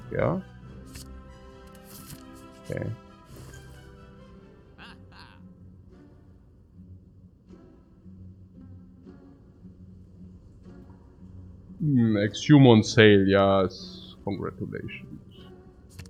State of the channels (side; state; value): both; identical; correlation 1.00